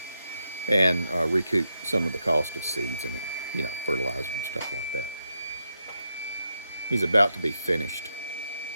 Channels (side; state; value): both; inverted; correlation -0.83